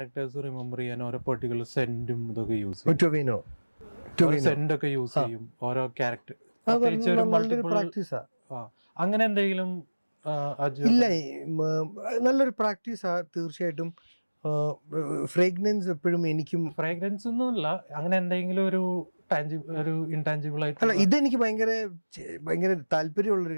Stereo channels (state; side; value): inverted; both; correlation -1.00